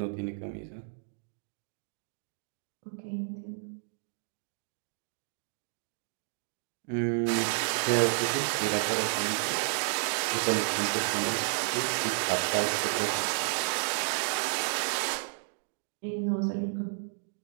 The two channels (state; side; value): silent; left; digital silence